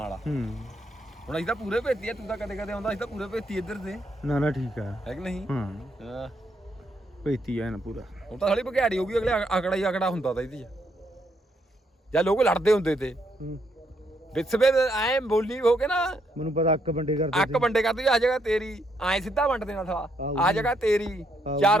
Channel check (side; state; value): both; normal; correlation 0.75